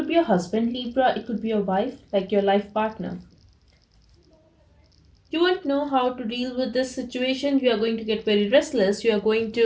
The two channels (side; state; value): both; identical; correlation 1.00